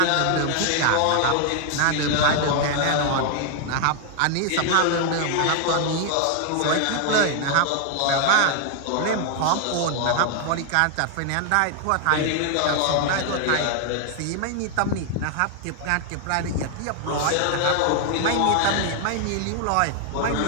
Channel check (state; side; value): different; both; correlation 0.00